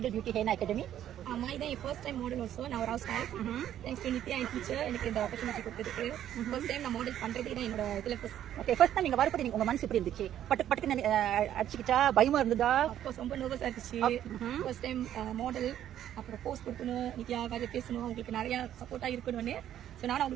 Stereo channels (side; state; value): left; quieter; 11.1 dB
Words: பியூட்டி ஹென்னா அகாடமி? ஆமா, இதான் என் ஃபர்ஸ்ட் டைம் மாடல். ஆல்சோ நான் ஒரு house wife. Thanks to Nithya N teacher எனக்கு இந்த ஆப்பர்ச்சுனிட்டி கொடுத்ததுக்கு. ஃபர்ஸ்ட் டைம் நான் மாடல் பண்றதே தான் என்னோட இதுல ஃபர்ஸ்ட். ஓகே, ஃபர்ஸ்ட் டைம் நீங்க வரப்போ உங்க மனசு எப்படி இருந்துச்சு? பட்டுக்கு அடிச்சுக்கிட்டா பயமா இருந்ததா? ஆஃப்கோர்ஸ் ரொம்ப நர்வஸா இருந்துச்சு. ஃபர்ஸ்ட் டைம் மாடல், அப்புறம் போஸ்ட் கொடுக்கணும், நித்யா காஜ பேசணும், உங்களுக்கு நிறைய சப்போர்ட்டா இருக்கணும்னு. ஸோ நானும்